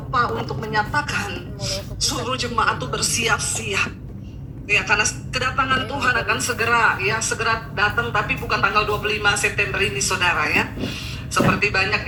untuk menyatakan suruh jemaat itu bersiap-siap. Ya, karena kedatangan Tuhan akan segera datang, tapi bukan tanggal 25 September ini, saudara ya. Seperti banyak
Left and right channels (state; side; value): identical; both; correlation 1.00